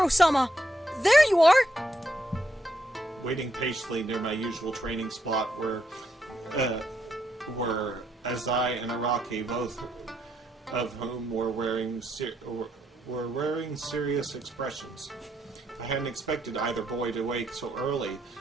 there you are. Waiting patiently near my usual training spot were Azai and Araki, both of whom were wearing serious expressions. I hadn't expected either boy to wake so early.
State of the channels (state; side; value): normal; both; correlation 0.78